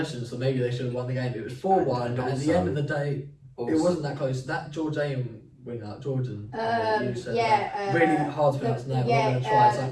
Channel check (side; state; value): both; identical; correlation 1.00